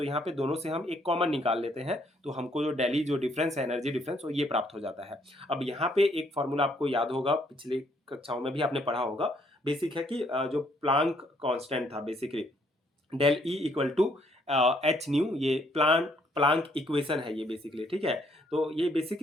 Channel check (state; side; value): normal; both; correlation 0.68